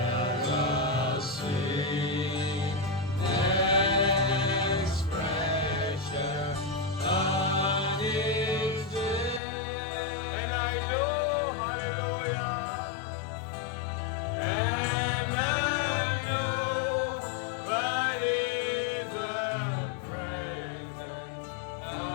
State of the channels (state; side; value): drops out; right; at 9.4 s